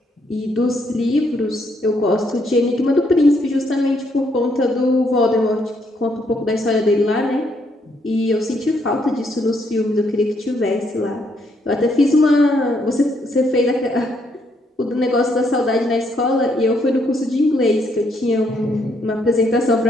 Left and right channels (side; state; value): both; normal; correlation 0.73